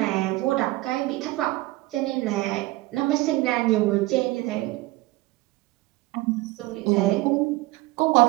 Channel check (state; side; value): quieter; left; 19.7 dB